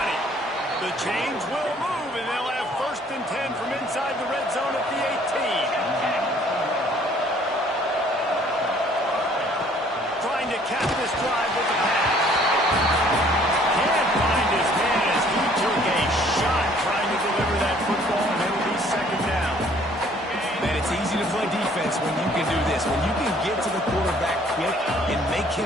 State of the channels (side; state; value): both; normal; correlation 0.59